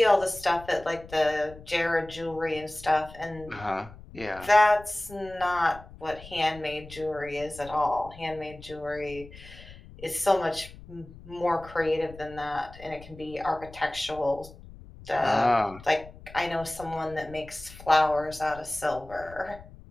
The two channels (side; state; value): left; noise; rumble, 18 dB below the sound